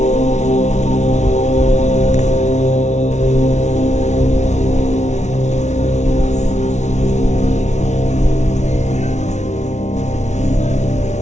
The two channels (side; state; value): right; late; 0.33 ms